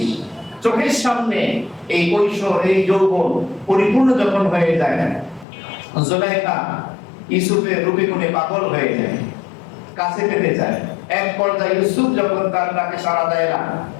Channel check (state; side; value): drops out; right; at 5.5 s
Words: চোখের সামনে এই কৈশোর, এই যৌবন পরিপূর্ণ যখন হয়ে যায়, জুলাইখা ইউসুফের রূপে গুণে পাগল হয়ে যায়, কাছে পেতে চায়। এক পর্যায়ে ইউসুফ যখন তার ডাকে সাড়া দেয় না,